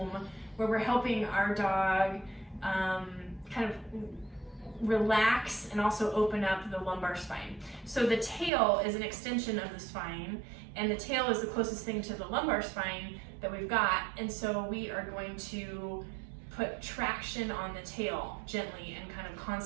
where we're helping our dog kind of relax and also open up the lumbar spine. So the tail is an extension of the spine, and the tail is the closest thing to the lumbar spine that we've got, and so we are going to put traction on the tail gently and kind of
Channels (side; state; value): left; drops out; at 8.5 s